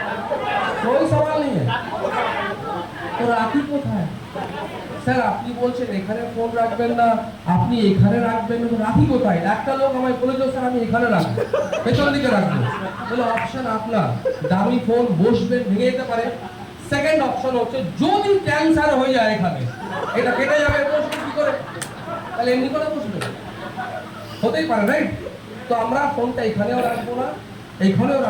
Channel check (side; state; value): both; identical; correlation 1.00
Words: कोई सवाल नहीं है। তো রাখি কোথায়? স্যার আপনি বলছেন এখানে ফোন রাখবেন না, আপনি এখানে রাখবেন না, তো রাখি কোথায়? একটা লোক আমায় বলেছিল স্যার আমি এখানে রাখবো, পেছন দিকে রাখবো। বলে অপশন আপনার, দামি ফোন বসবেন, ভেঙে যেতে পারে। সেকেন্ড অপশন হচ্ছে যদি ক্যান্সার হয়ে যায় এখানে, এটা কেটে যাবে, বসবেন কি করে? তাহলে এমনি করে বসবেন, হতেই পারে, রাইট? তো আমরা ফোনটা এখানেও রাখবো না, এইখানেও